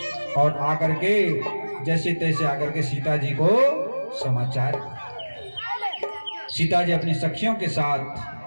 और आकर के जैसे तैसे आकर के सीता जी को समाचार। सीता जी अपनी सखियों के साथ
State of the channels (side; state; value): both; inverted; correlation -1.00